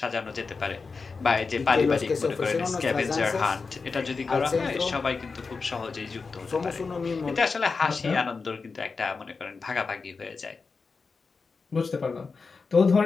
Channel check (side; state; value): right; quieter; 4.6 dB